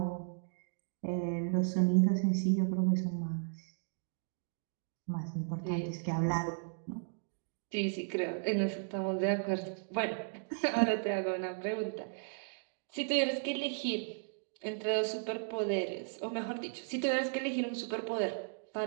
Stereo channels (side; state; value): left; silent; digital silence